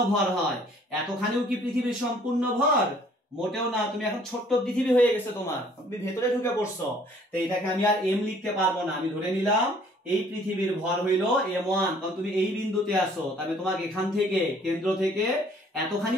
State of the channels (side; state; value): both; normal; correlation 0.58